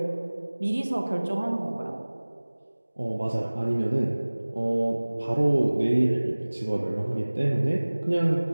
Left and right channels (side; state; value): both; inverted; correlation -1.00